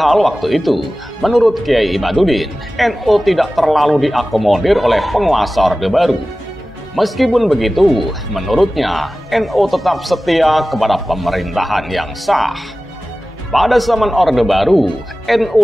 waktu itu, menurut Kiai Imaduddin, NU tidak terlalu diakomodir oleh penguasa Orde Baru. Meskipun begitu, menurutnya, NU tetap setia kepada pemerintahan yang sah. Pada zaman Orde Baru, NU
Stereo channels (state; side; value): normal; both; correlation 0.96